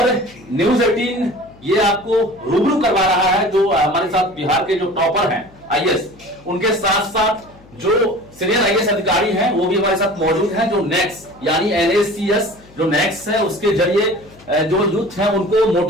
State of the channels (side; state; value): left; noise; hum, 25 dB below the sound